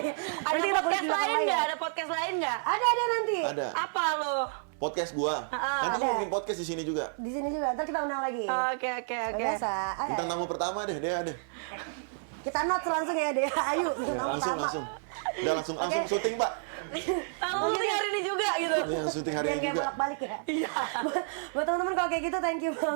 Ada Nanti podcast kita lain kulik nggak? ya. Ada podcast lain nggak? Ada nanti. Ada. Apa lo? Podcast gua. Nanti ada. gue bikin podcast di sini juga. Di sini juga. Ntar kita undang lagi. Oke. Biasa. Bintang tamu pertama deh, Dea deh. Kita notes langsung ya deh. Ayo. Langsung. Udah langsung syuting, Pak. Lalu syuting hari ini juga gitu. Ini yang syuting hari Biar ini kayak juga. bolak-balik ya. Iya. Buat teman-teman kalau kayak gitu thank you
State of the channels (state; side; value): silent; left; digital silence